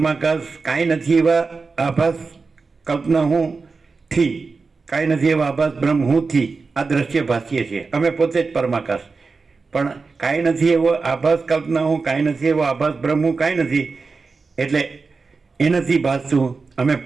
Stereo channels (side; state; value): left; quieter; 4.4 dB